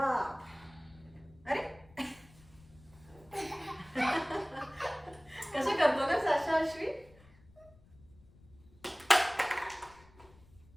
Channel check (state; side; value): noise; left; rumble, 25 dB below the sound